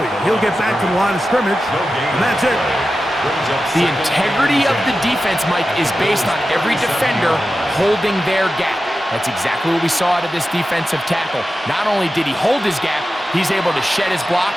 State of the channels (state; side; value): normal; both; correlation 0.92